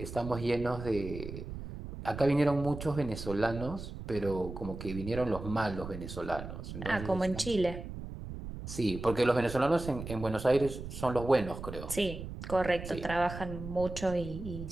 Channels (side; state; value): right; noise; rumble, 9 dB below the sound